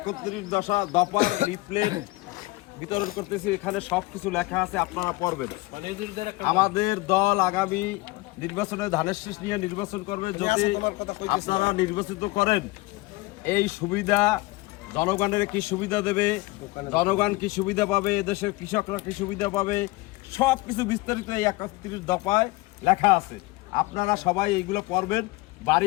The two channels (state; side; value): quieter; right; 21.6 dB